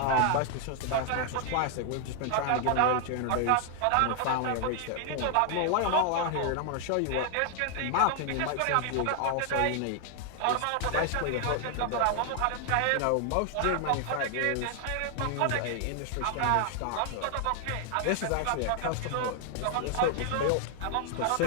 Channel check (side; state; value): both; different; correlation 0.00